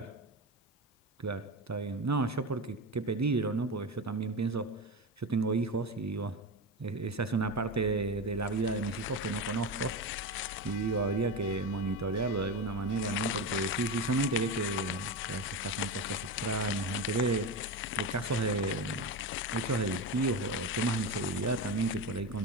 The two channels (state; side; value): normal; both; correlation 0.20